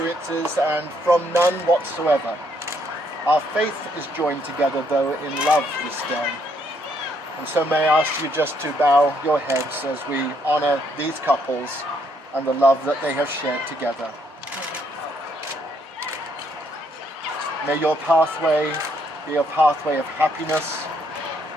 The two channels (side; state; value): both; normal; correlation 0.71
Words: and from none whatsoever. Our faith is joined together, though, in love this day. And so may I ask you just to bow your heads as we honor these couples and the love that they have shared together. May your pathway be a pathway of happiness